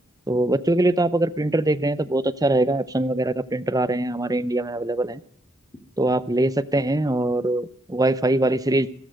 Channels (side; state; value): both; normal; correlation 0.75